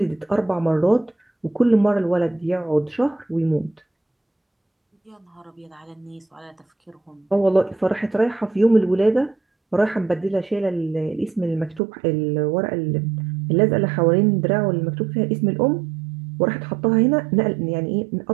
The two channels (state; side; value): drops out; left; at 11.8 s